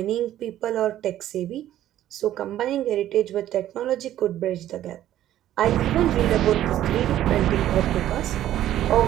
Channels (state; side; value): quieter; left; 12.6 dB